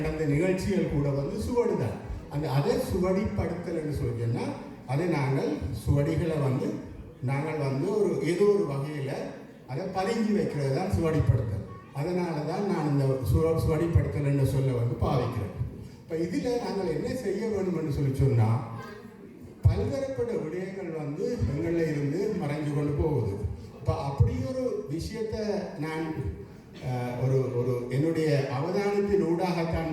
நிகழ்ச்சிகள் கூட வந்து சுவடு தான். அதை சுவடிப்படுத்தல் என்று சொன்னால் அதை நாங்கள் சுவடிகளை வந்து நாங்கள் வந்து ஒரு ஏதோ ஒரு வகையில் அதை பதிஞ்சு வைக்கிறது தான் சுவடிப்படுத்தல். அதனால தான் நான் இந்த சுவடிப்படுத்தல் என்று சொல்ல வந்து பாவிக்கிறேன். இப்போ இதில் நாங்கள் என்ன செய்ய வேண்டும் என்று சொன்னால் பல்வேறுபட்ட விடயங்கள் வந்து எங்களில் இருந்து மறைஞ்சு கொண்டு போகுது. இப்போ அப்படி ஒரு விஷயத்தை நான் ஒரு என்னுடைய அவதானத்தின் ஊடாகத்தான்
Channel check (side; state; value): both; identical; correlation 1.00